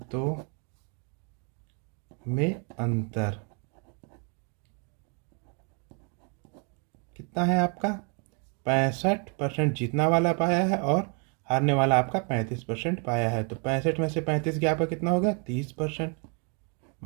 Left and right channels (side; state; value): left; quieter; 37.7 dB